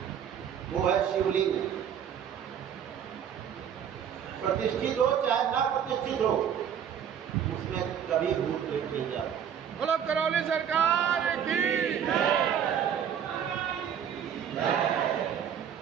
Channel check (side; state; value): left; quieter; 8.7 dB